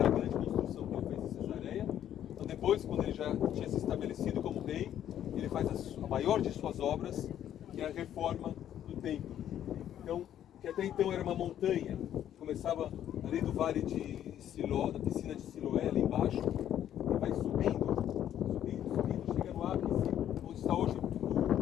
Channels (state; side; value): quieter; right; 10.8 dB